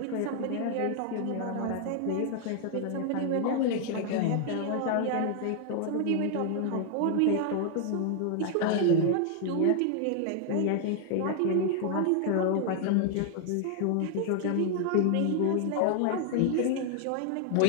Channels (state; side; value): different; both; correlation 0.00